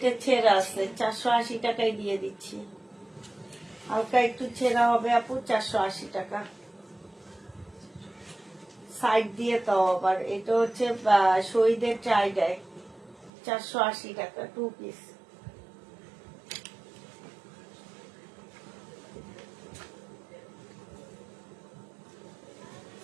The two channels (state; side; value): drops out; left; at 13.3 s